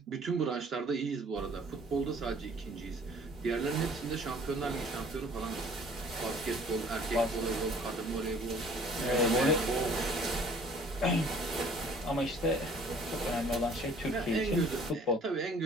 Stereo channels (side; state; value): both; normal; correlation 0.54